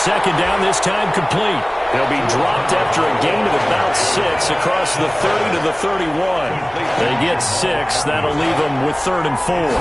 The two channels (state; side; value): noise; left; hum, 27 dB below the sound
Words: down, this time complete. They'll be dropped after a gain of about 6 across the 30 to the 31. They get 6. That'll leave them with 3rd and 4.